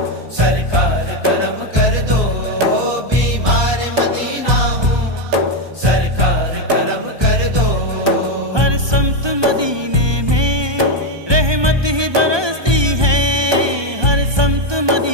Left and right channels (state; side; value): late; left; 1.2 ms